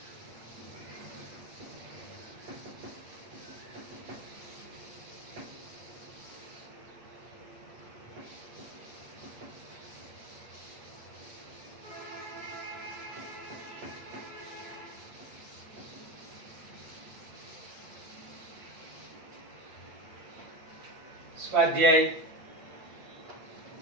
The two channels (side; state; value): left; late; 8.5 ms